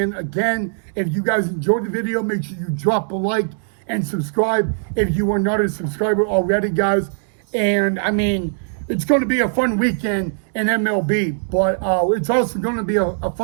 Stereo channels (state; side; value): silent; left; digital silence